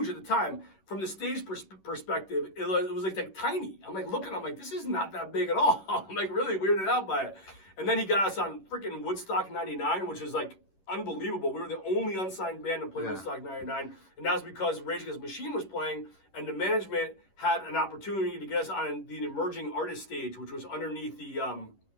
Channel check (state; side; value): late; right; 11 ms